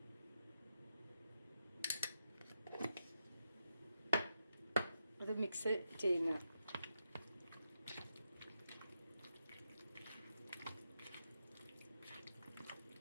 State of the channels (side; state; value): both; inverted; correlation -0.85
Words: അത് മിക്സ് ചെയ്യുന്ന